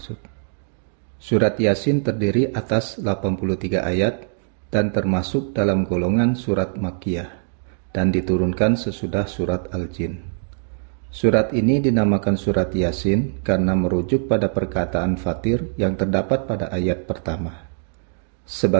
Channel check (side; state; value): left; silent; digital silence